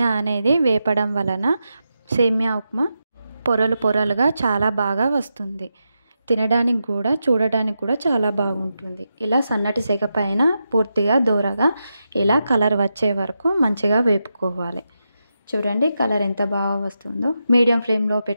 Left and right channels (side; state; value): both; inverted; correlation -0.87